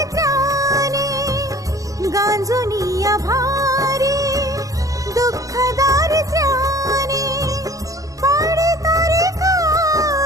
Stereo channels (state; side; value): late; left; 0.17 ms